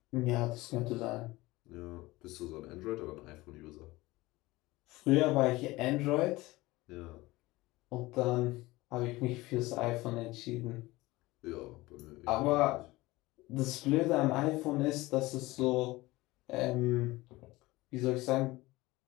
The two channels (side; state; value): right; quieter; 20.0 dB